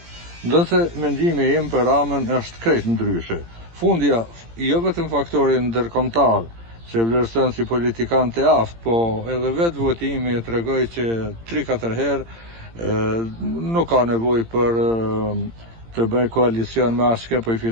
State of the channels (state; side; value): late; left; 18 ms